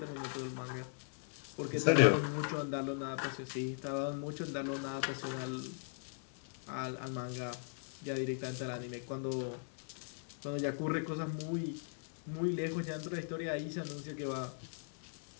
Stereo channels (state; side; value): silent; right; 52 dB below the other